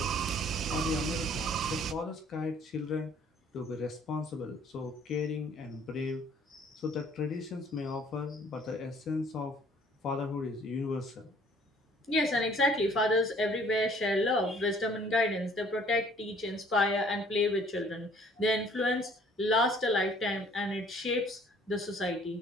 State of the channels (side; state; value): both; normal; correlation 0.57